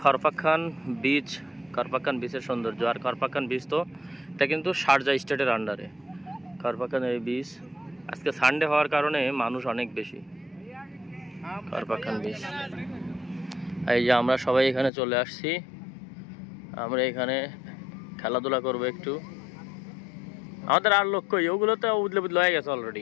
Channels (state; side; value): drops out; right; at 14.9 s